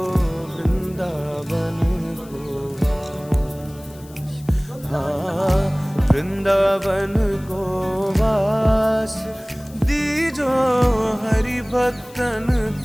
वृंदावन को वास, हाँ वृंदावन को वास, दीजो हरि भक्तन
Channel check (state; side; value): noise; left; hiss, 23 dB below the sound